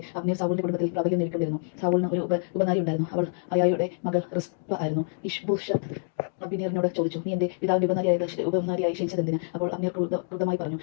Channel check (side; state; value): right; silent; digital silence